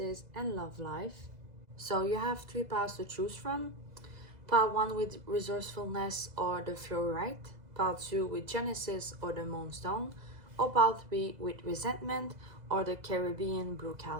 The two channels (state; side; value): late; left; 2.0 ms